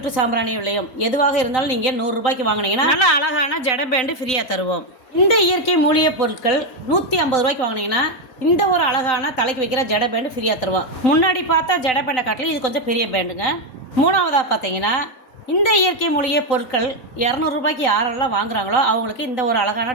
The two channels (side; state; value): right; late; 3.9 ms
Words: சாம்பிராணி விலையும் எதுவாக இருந்தாலும் நீங்கள் 100 ரூபாய்க்கு வாங்கினீங்கன்னா நல்ல அழகான ஜட பேண்டு ஃப்ரீயாக தருவோம். இந்த இயற்கை மூலிகை பொருட்கள் 150 ரூபாய்க்கு வாங்கினீங்கன்னா இந்த ஒரு அழகான தலைக்கு வைக்கிற ஜட பேண்டு ஃப்ரீயாக தருவோம். முன்னாடி பார்த்தா ஜட பேண்டை காட்டிலும் இது கொஞ்சம் பெரிய பேண்டுங்க. மூணாவதாக பார்த்தீங்கன்னா இந்த இயற்கை மூலிகை பொருட்கள் 200 ரூபாய்க்கு யாரெல்லாம் வாங்குறாங்களோ அவங்களுக்கு இந்த ஒரு அழகான